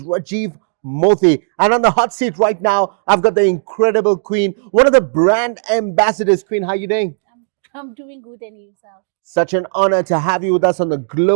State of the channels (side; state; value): left; silent; digital silence